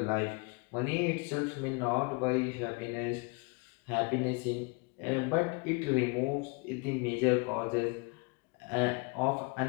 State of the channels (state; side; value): quieter; right; 30.2 dB